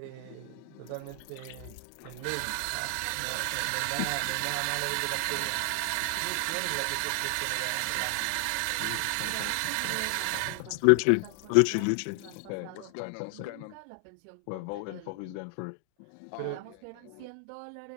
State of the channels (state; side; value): different; both; correlation 0.00